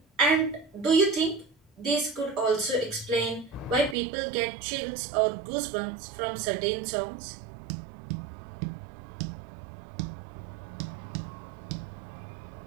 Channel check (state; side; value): drops out; left; at 4.0 s